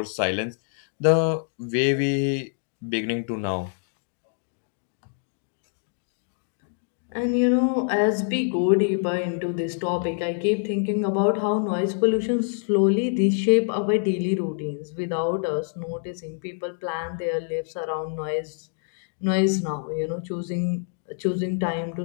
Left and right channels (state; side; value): silent; right; 61 dB below the other